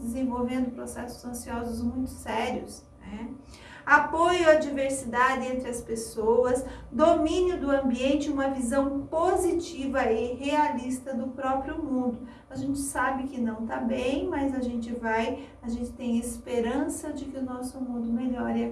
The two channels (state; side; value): identical; both; correlation 1.00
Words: processos ansiosos muito sérios, né? Apoio à diversidade entre as pessoas, domínio do ambiente, uma visão positiva e realista do próprio mundo. A gente sabe que não está bem, mas a gente tem esperança de que o nosso mundo melhore a